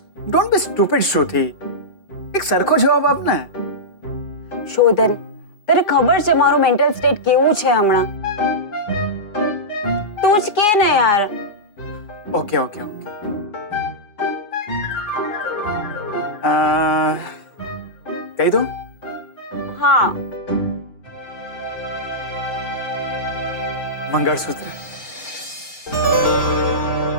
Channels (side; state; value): right; late; 4.8 ms